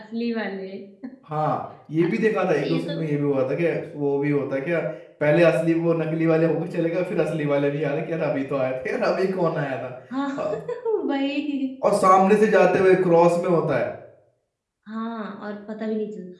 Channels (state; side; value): identical; both; correlation 1.00